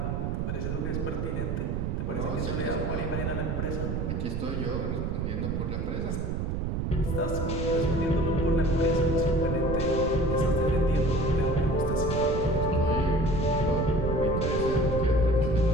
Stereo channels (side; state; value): right; noise; rumble, 1 dB below the sound